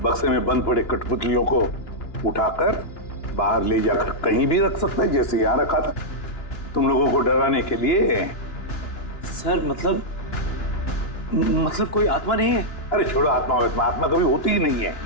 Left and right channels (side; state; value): right; late; 2.9 ms